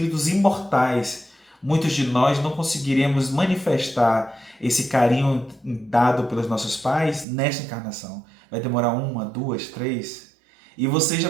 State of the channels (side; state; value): left; drops out; at 7.2 s